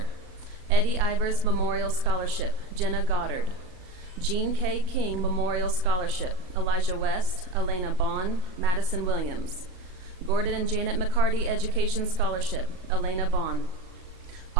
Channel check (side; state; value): left; late; 38 ms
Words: Eddie Ivers Memorial Scholarship, Jenna Goddard. Jean K. King Memorial Scholarship, Elijah West, Elena Bond, Madison Williams. Gordon and Janet McCarty Education Scholarship, Elena Bond.